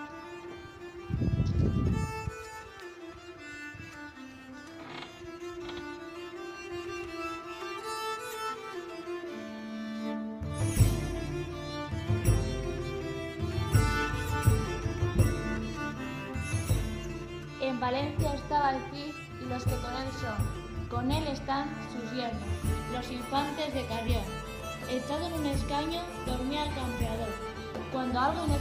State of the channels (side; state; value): both; identical; correlation 1.00